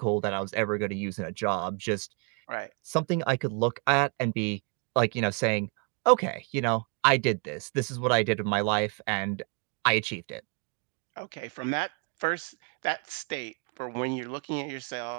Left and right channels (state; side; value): quieter; left; 35.3 dB